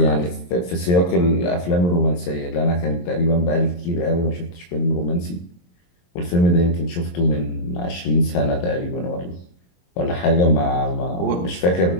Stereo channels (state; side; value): late; right; 23 ms